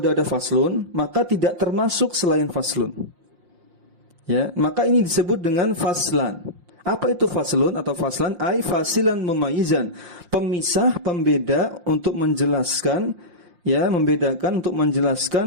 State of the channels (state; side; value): late; left; 5.7 ms